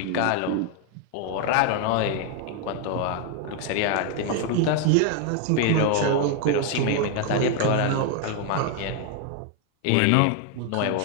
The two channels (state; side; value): different; both; correlation 0.00